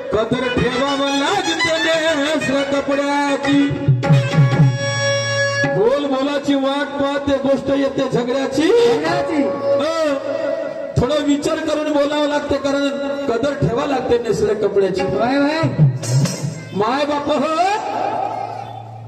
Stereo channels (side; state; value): both; identical; correlation 1.00